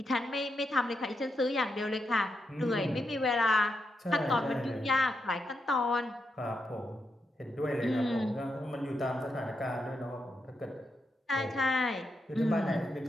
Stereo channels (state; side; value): normal; both; correlation 0.83